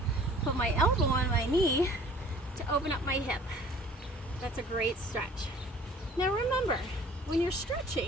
put my elbow on my knee to open up my hip. That's a great stretch. Now remember, when you're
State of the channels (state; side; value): normal; both; correlation 0.50